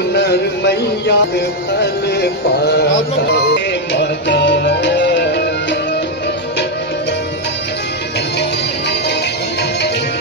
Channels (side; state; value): both; normal; correlation 0.03